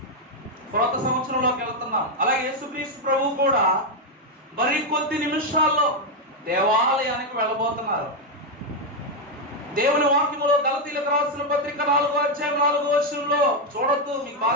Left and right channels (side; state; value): both; normal; correlation 0.03